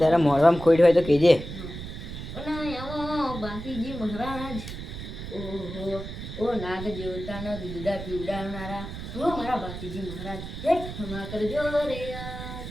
મોઢામાં ખોટ હોય તો કેજે બાંકીજી મહારાજ ઓહો ઓ નાગ દેવતાના દૂધા પીવડાવનારા ઓ મારા બાંકીજી મહારાજ હે ક્ષમા કરજો રે યાર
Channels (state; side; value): noise; right; rumble, 9 dB below the sound